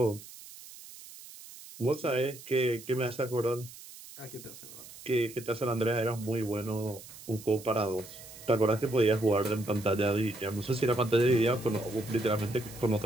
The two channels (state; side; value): noise; right; hiss, 17 dB below the sound